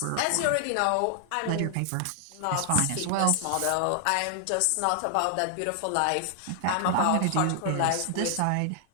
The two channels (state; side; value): different; both; correlation 0.00